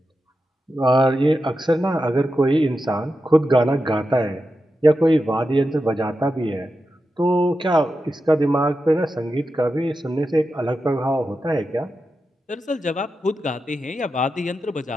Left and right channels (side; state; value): both; normal; correlation 0.90